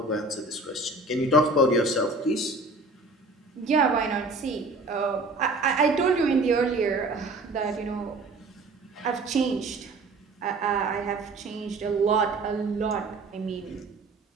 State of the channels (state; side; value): quieter; left; 3.0 dB